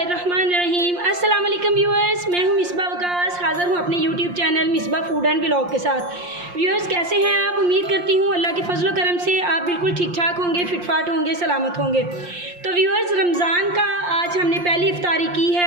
अस्सलाम वालेकुम व्यूअर्स, मैं हूं मिसबा वकास, हाज़िर हूं अपने YouTube channel Misbah food and vlog के साथ। व्यूअर्स कैसे हैं आप? उम्मीद करती हूं अल्लाह के फजल करम से आप बिल्कुल ठीक ठाक होंगे, फिटफाट होंगे, सलामत होंगे। तो व्यूअर्स, रमज़ान का आज हमने पहली इफ्तारी की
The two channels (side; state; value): left; late; 5.7 ms